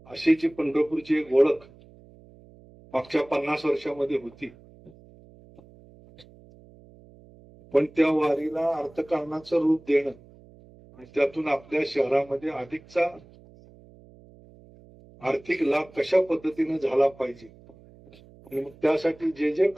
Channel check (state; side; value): noise; right; hum, 24 dB below the sound